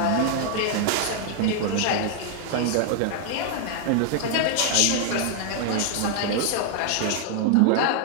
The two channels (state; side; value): different; both; correlation 0.00